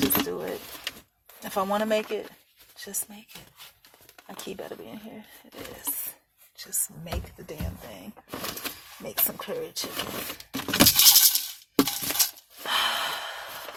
do it. If I want to make it, just make it. My key better be in here. It is. Just make the damn thing. Make some curry chicken.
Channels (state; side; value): identical; both; correlation 1.00